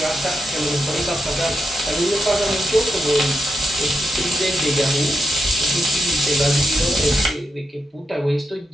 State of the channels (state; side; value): normal; both; correlation 0.85